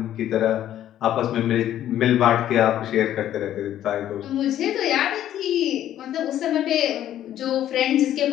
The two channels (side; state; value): right; quieter; 11.8 dB